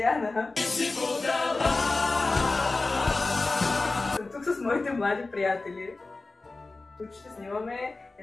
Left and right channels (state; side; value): quieter; right; 3.4 dB